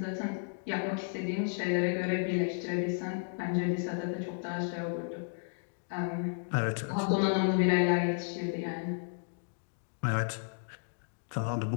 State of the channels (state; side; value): silent; right; digital silence